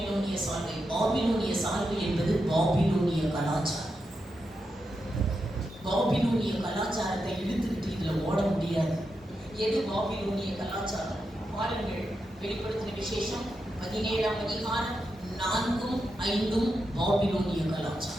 சால்வை. பாபிலோனிய சால்வை என்பது பாபிலோனிய கலாச்சாரம். பாபிலோனிய கலாச்சாரத்தை இழுத்துக்கிட்டு இதுல ஓட முடியாது. எது பாபிலோனிய கலாச்சாரம்? பாருங்கள், வெளிப்படுத்தின விசேஷம் 17ஆம் அதிகாரம் 4ம் 5ம் பாபிலோனிய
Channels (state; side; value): normal; both; correlation 0.86